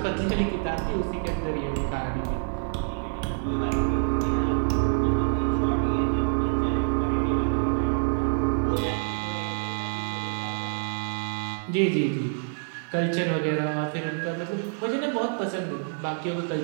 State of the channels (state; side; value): silent; left; 60 dB below the other